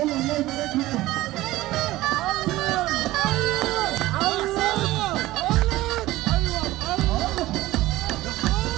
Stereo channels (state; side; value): quieter; left; 17.3 dB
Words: الله يبارك لك.